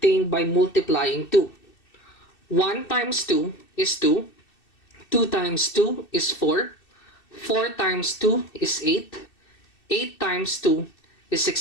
by multiplying 2. 1 times 2 is 2, 2 times 2 is 4, 4 times 2 is 8, 8 times 2 is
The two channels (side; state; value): right; late; 2.6 ms